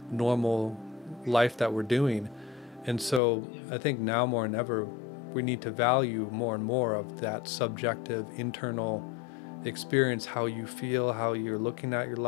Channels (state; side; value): drops out; right; at 3.2 s